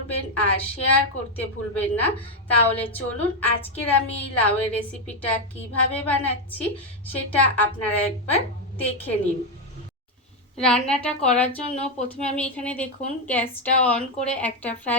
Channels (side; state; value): both; normal; correlation 0.05